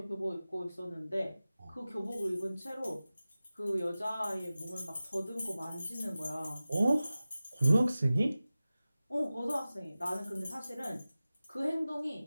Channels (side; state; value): both; inverted; correlation -0.96